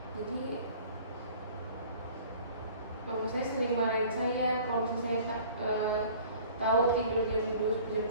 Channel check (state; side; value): inverted; both; correlation -0.48